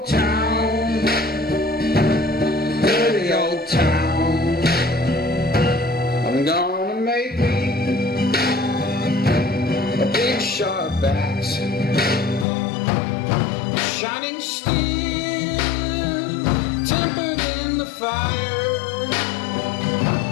town, dirty old town. I'm gonna make me a big sharp axe, shining steel, tempered in the fire.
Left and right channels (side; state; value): right; drops out; at 12.5 s